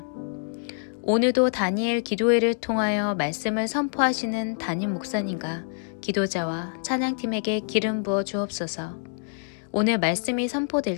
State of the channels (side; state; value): right; silent; digital silence